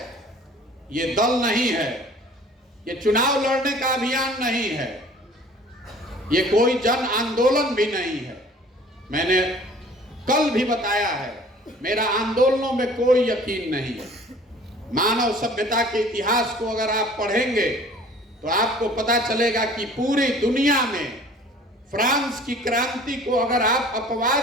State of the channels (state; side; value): normal; both; correlation 0.49